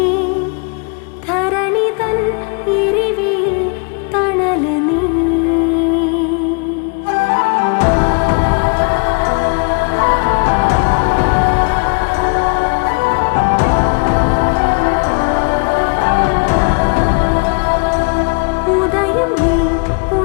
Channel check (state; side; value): quieter; right; 35.3 dB